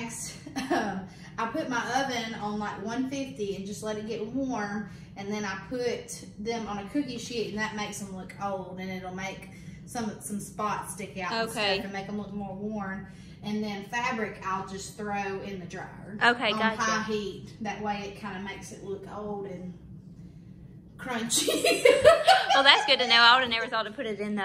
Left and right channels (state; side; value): identical; both; correlation 1.00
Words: I put my oven on like 150 and just let it get warm, and then I put them on a cookie sheet, and that makes them look old, and it'll make some spots stick out and stuff and make them look more worn. And then fabric I'll just throw in the dryer on high heat. That way it kind of makes it look old and crunchy. Well, that's good to know. I would have never thought to put it in